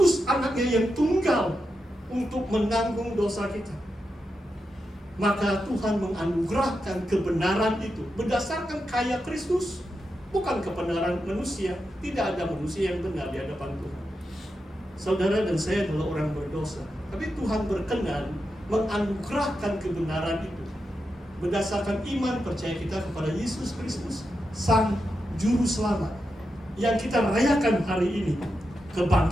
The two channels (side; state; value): both; normal; correlation 0.87